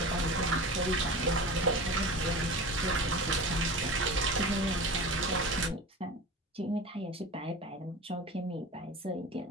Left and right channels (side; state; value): both; normal; correlation 0.33